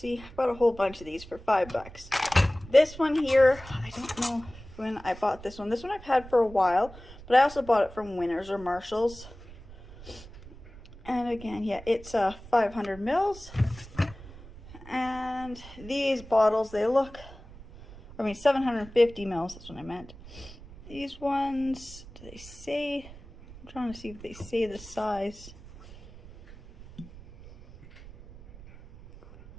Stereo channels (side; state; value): right; noise; rumble, 18 dB below the sound